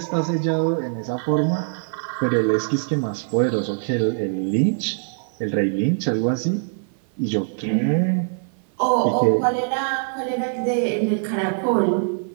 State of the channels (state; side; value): silent; left; 56 dB below the other